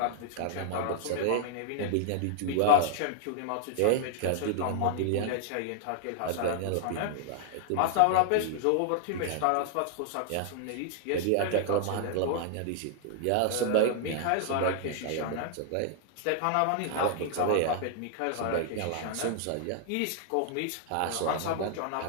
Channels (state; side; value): different; both; correlation -0.01